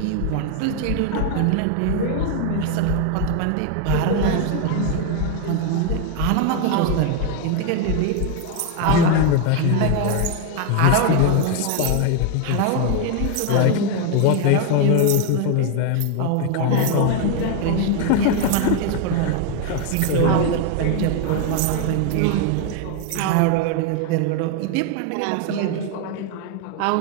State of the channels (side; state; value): both; different; correlation 0.01